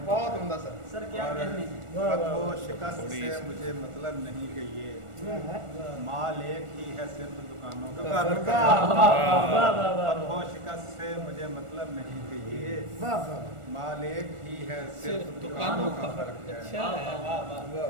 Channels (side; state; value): left; late; 1.4 ms